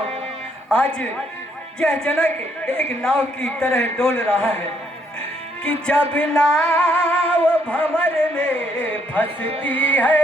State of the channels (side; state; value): both; normal; correlation 0.71